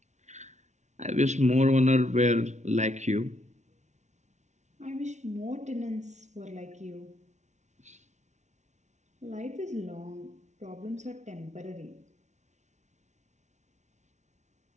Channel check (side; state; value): left; late; 0.33 ms